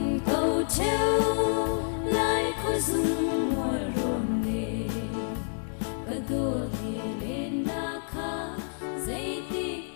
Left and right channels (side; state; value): right; silent; 59 dB below the other